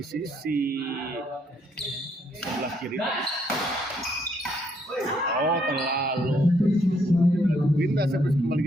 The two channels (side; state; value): both; normal; correlation 0.71